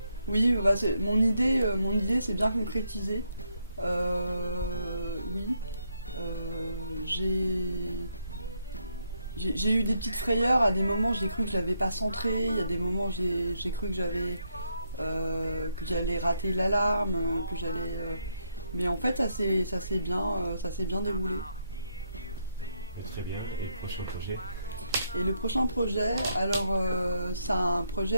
Oui, bah mon idée c'est bien concrétisé. Oui, j'ai eu des petites frayeurs. À des moments, j'ai cru que je l'avais pas centré. Il y a des moments, j'ai cru que que j'allais rater l'alarme, que j'allais. Mais en fait, ça s'est bien déroulé. Très bien. Et le prochain projet? Et le prochain projet, alors c'est un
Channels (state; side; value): inverted; both; correlation -0.77